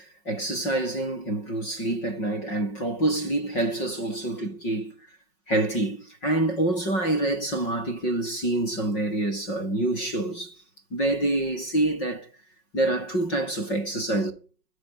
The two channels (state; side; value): late; right; 5.4 ms